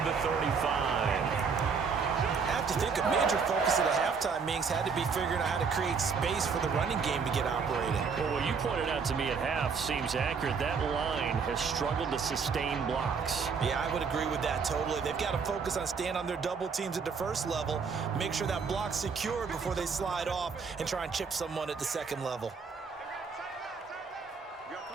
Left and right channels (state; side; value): quieter; left; 5.6 dB